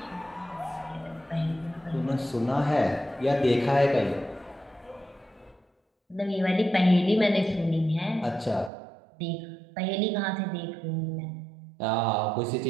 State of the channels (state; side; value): drops out; left; at 8.7 s